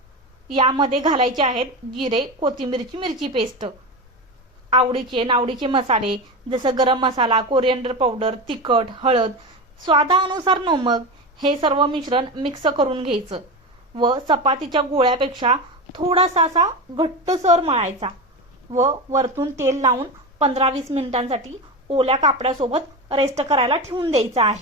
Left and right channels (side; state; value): both; normal; correlation 0.21